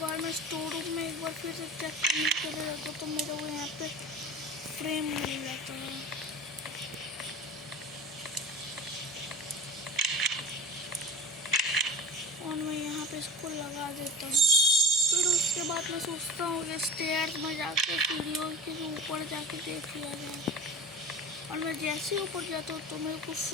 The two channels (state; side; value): normal; both; correlation 0.33